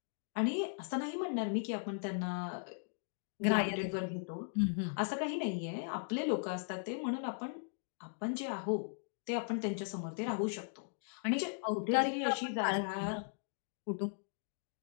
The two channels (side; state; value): right; silent; digital silence